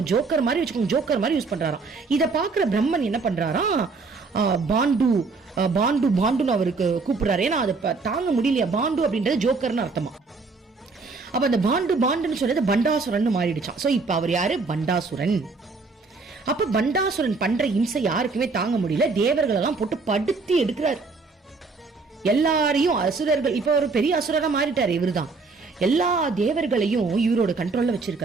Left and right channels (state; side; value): quieter; left; 4.2 dB